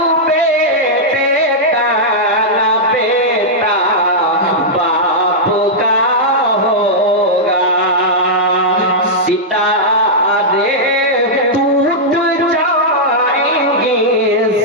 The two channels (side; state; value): both; normal; correlation -0.08